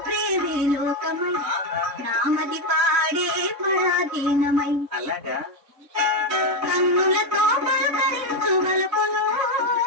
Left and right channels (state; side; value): late; left; 3.6 ms